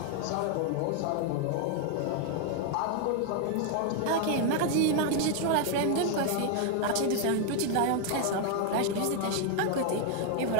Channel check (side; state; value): both; different; correlation 0.01